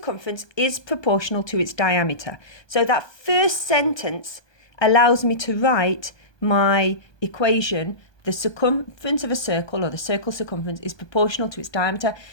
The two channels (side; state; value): right; late; 1.2 ms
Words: is proportional to its diameter. So that first sentence allows me to write my equation. The circumference of a circle, or the circle's circumference, is proportional to its diameter.